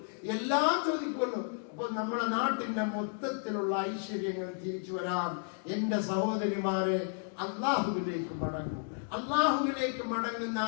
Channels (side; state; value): right; silent; 56 dB below the other